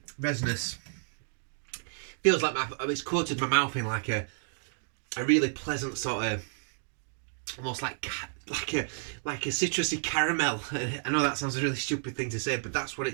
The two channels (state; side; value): silent; left; digital silence